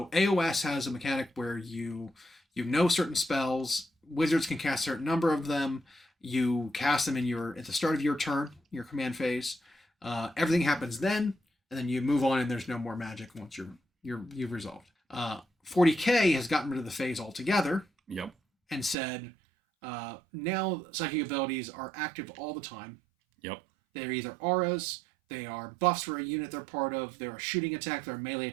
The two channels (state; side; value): drops out; left; at 18.9 s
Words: AoS has a mechanic where you know certain spells, wizards can cast a certain number of them, you cast them at the start of your turn, your command phase. Everything happens then, and then you move on and there's no more magic once you've resolved. 40K has gotten rid of the phase altogether. Yep. And said, now psychic abilities are active all the time. Yep. They're either auras, they are buffs for a unit they're part of, they're a shooting attack, they're a melee